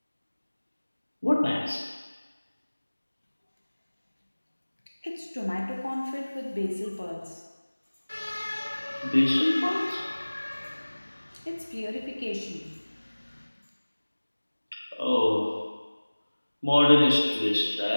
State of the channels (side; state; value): both; inverted; correlation -1.00